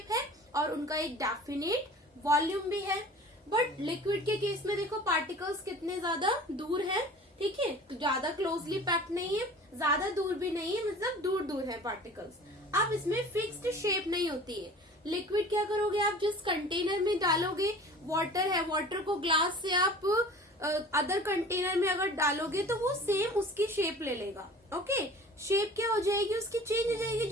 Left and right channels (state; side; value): normal; both; correlation 0.43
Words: है और उनका एक डेफिनेट वॉल्यूम भी है। बट लिक्विड के केस में देखो पार्टिकल्स कितने ज्यादा दूर है, ठीक है, तो ज्यादा क्लोजली पैक्ड नहीं है, ज्यादा दूर भी नहीं है, मतलब दूर दूर है पार्टिकल्स। अब इसमें फिक्स्ड शेप नहीं होती है। लिक्विड क्या करोगे आप, जिस कंटेनर में डालोगे, वाटर है, वाटर को ग्लास से आप अदर कंटेनर में अगर डालोगे तो वो सेम उसकी शेप ले लेगा। ओके, शेप क्या हो जाएगी उसकी, चेंज हो जाएगी।